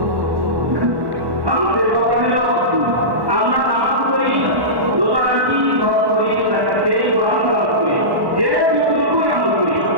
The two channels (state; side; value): late; left; 1.1 ms